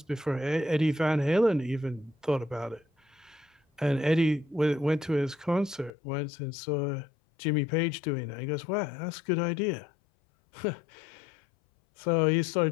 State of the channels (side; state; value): right; drops out; at 5.9 s